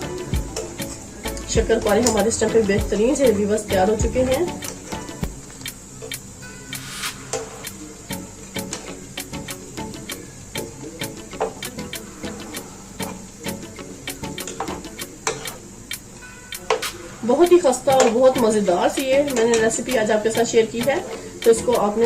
शक्करपारे हमारे इस टाइम पे बेहतरीन से व्यूअर्स तैयार हो चुके हैं। बहुत ही खस्ता और बहुत मजेदार सी ये मैंने रेसिपी आज आपके साथ शेयर की है, तो इसको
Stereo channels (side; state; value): both; identical; correlation 1.00